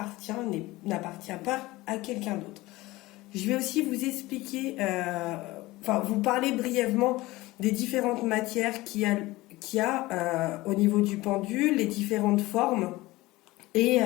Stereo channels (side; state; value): right; quieter; 19.5 dB